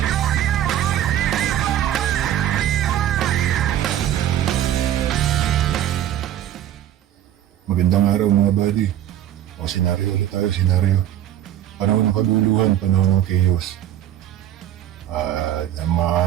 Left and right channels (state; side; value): quieter; left; 11.5 dB